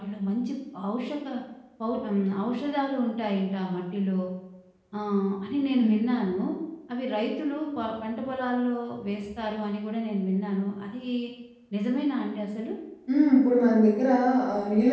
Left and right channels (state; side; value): identical; both; correlation 1.00